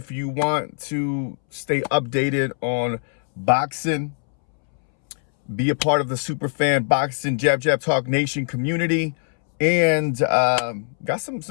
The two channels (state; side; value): silent; right; 64 dB below the other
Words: you want to stay updated on boxing. Be a part of the Superfan Boxing Jab Talk Nation community, and got